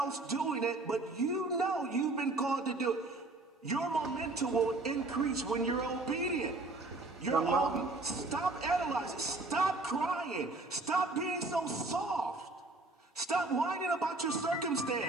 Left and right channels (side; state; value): left; quieter; 3.1 dB